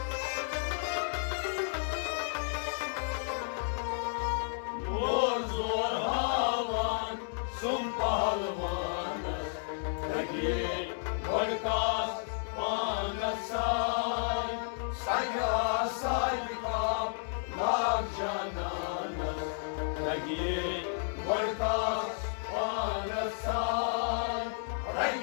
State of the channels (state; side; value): silent; right; digital silence